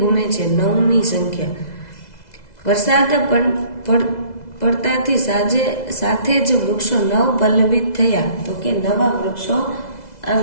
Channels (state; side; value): late; right; 2.0 ms